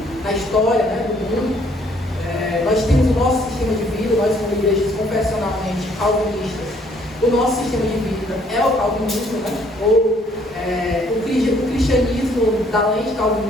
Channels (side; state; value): both; normal; correlation 0.63